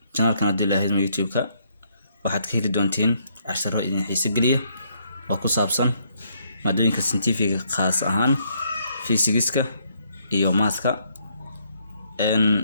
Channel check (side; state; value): both; inverted; correlation -0.71